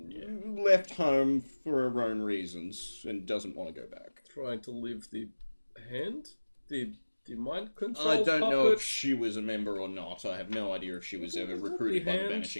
Left home for her own reasons and doesn't want to go back. Trying to leave the hand? The mind control I don't know puppet? if she was a member or not. I have no idea if she was ever recruited by the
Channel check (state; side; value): inverted; both; correlation -1.00